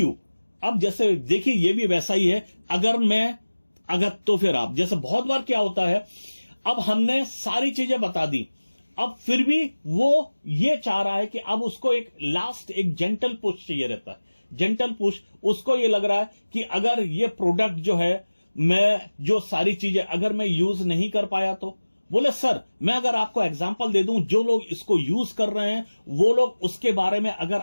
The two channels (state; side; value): inverted; both; correlation -1.00